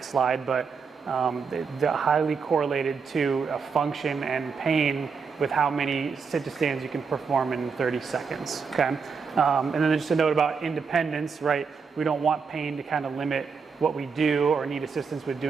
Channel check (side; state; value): left; quieter; 5.5 dB